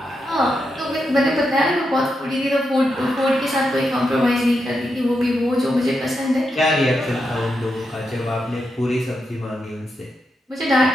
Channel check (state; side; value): normal; both; correlation 0.85